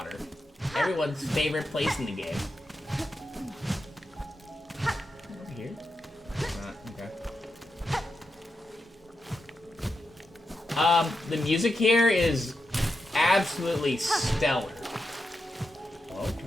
everyone's favorite place in the game. Over here? Okay. The music here is absolutely stellar. Oh,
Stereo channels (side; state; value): both; normal; correlation 0.87